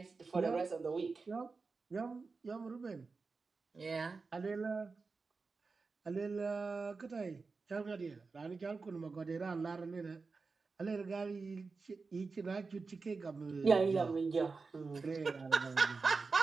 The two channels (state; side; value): quieter; left; 4.4 dB